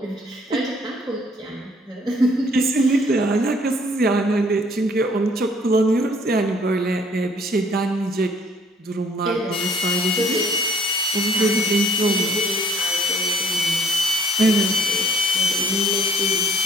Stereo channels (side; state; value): both; normal; correlation 0.59